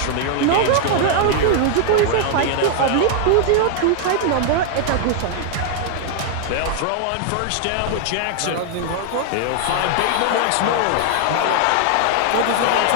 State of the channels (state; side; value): different; both; correlation 0.00